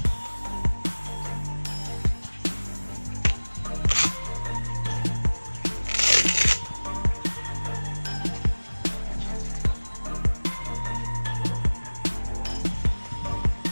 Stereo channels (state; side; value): inverted; both; correlation -1.00